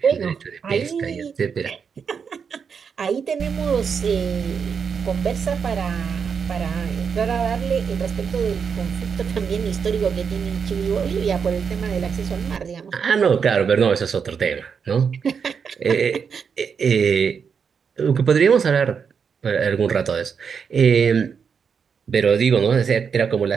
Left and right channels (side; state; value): left; quieter; 6.4 dB